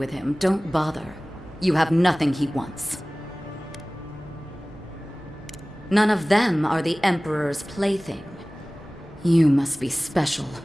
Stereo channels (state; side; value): normal; both; correlation 0.98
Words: him, don't bother. You have nothing he wants. None of them are the Emperor's plaything. You must be special,